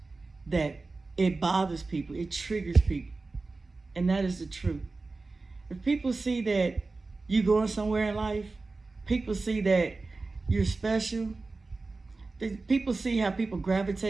that it bothers people, it triggers people, and that is the truth. If people see that you going somewhere in life, people see that you're special, people see how people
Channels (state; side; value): quieter; left; 3.6 dB